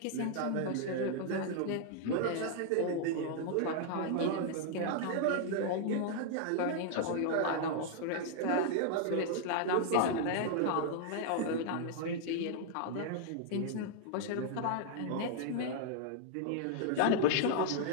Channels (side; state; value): both; different; correlation 0.00